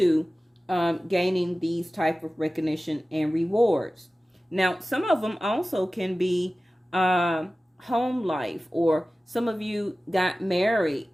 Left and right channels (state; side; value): normal; both; correlation 0.96